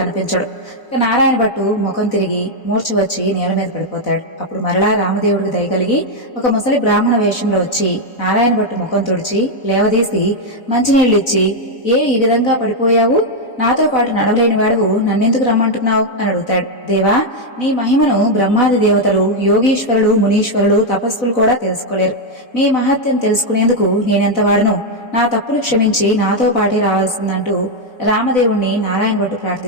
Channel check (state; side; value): late; right; 4.0 ms